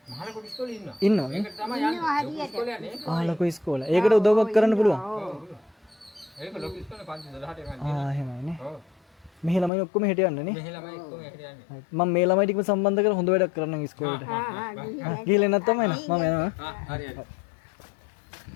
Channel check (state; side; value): drops out; right; at 9.7 s